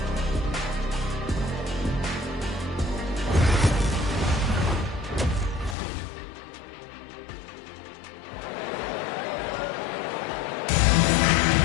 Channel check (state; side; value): drops out; right; at 5.8 s